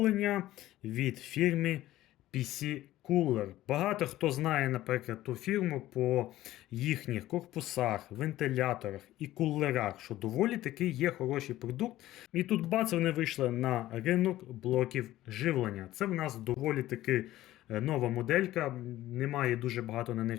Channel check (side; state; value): right; quieter; 15.1 dB